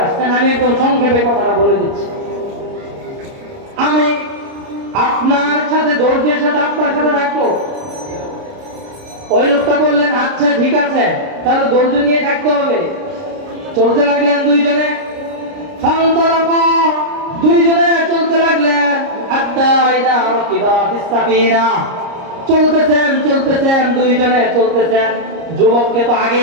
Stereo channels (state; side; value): late; left; 30 ms